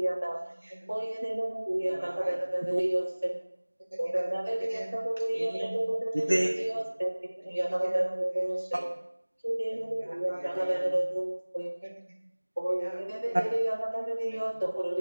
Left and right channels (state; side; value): inverted; both; correlation -1.00